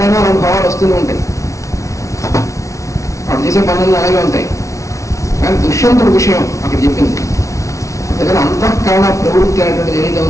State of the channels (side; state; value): right; late; 0.15 ms